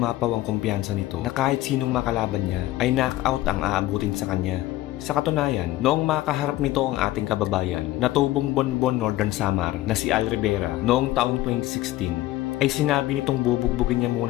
ang kumpiyansa nito na kahit sinong makalaban niya ay knockout ang aabutin sa kanya. Sa katunayan, noong makaharap nito ang ating kababayan na tubong Bonbon Northern Samar na si Al Rivera noong taong 2016 ay sinabi nitong bubugbugin niya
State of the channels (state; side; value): quieter; right; 16.0 dB